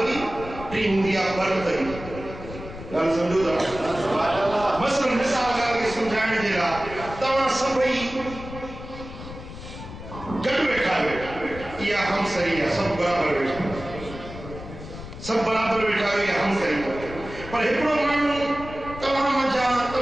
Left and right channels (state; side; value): noise; left; rumble, 12 dB below the sound